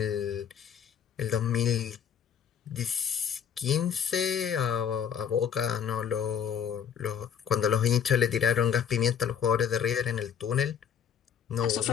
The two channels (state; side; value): quieter; right; 8.0 dB